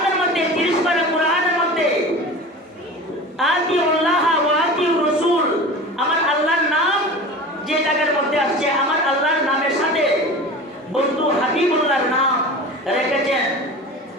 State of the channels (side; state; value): both; normal; correlation 0.34